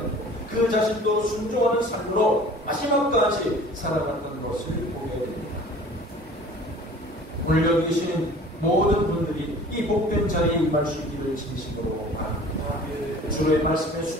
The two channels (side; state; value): both; normal; correlation 0.46